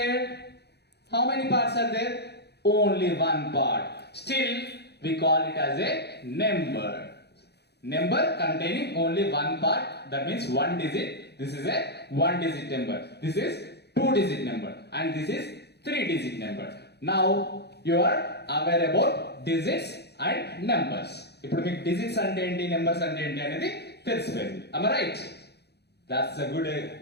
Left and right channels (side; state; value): right; late; 0.48 ms